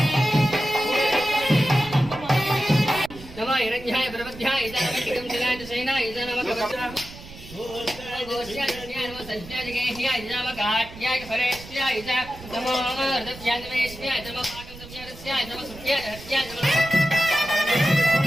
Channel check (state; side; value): noise; right; rumble, 16 dB below the sound